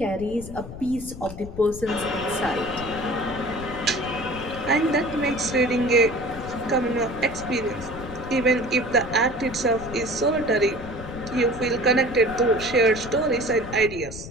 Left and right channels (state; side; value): noise; left; rumble, 12 dB below the sound